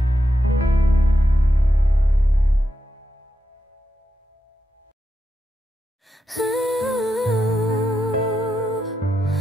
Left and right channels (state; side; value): normal; both; correlation 0.86